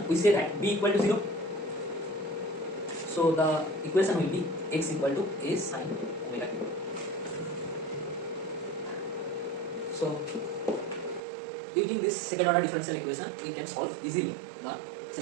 we say that b equal to 0. So the equation will be x equal to a sin omega t. So using this second order differential equation, we can solve easily the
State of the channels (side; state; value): left; drops out; at 11.2 s